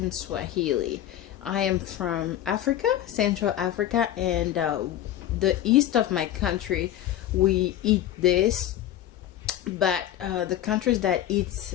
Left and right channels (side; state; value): right; quieter; 12.1 dB